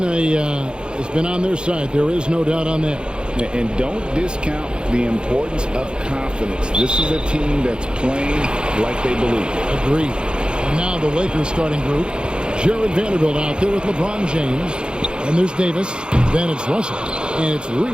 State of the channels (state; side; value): late; left; 0.051 ms